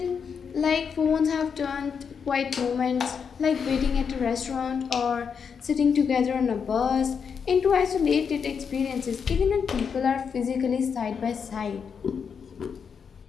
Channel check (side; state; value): right; quieter; 6.5 dB